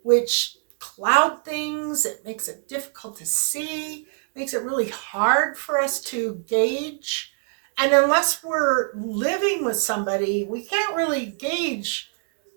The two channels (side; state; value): left; silent; digital silence